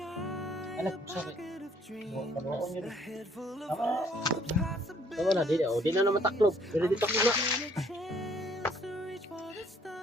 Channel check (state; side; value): normal; both; correlation 0.62